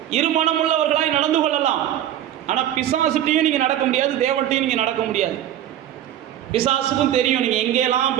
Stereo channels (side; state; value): left; quieter; 11.6 dB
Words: இருமனமுள்ளவர்களாய் நடந்து கொள்ளலாம். ஆனால் பிசாசுட்டையும் நீங்கள் நடக்க முடியாது, தேவன்ட்டையும் நீங்கள் நடக்க முடியாது. பிசாசுக்கும் தெரியும் நீங்கள் எங்கேயெல்லாம்